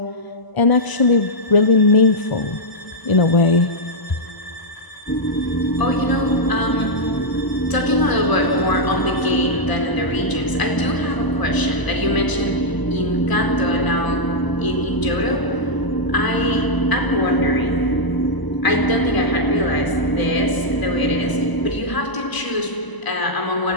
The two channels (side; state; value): right; late; 1.0 ms